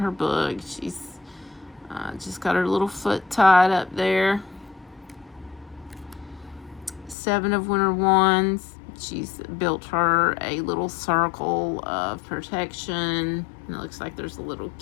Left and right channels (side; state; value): right; drops out; at 7.2 s